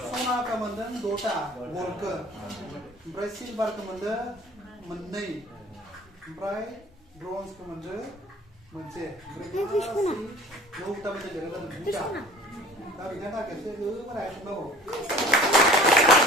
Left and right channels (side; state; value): both; normal; correlation 0.47